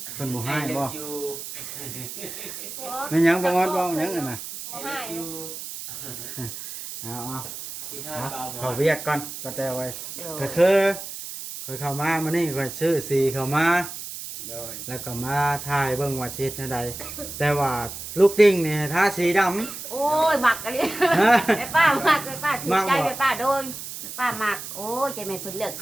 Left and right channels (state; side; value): noise; right; hiss, 9 dB below the sound